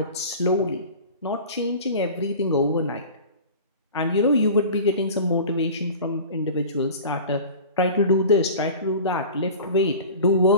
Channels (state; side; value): inverted; both; correlation -0.38